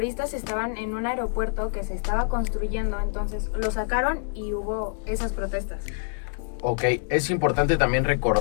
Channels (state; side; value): silent; right; digital silence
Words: estaban en un aeropuerto que se estaba construyendo, entonces lo sacaron y hubo esas protestas. Ok, es importante también